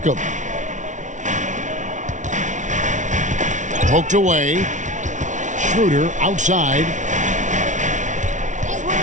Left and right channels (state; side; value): late; left; 0.36 ms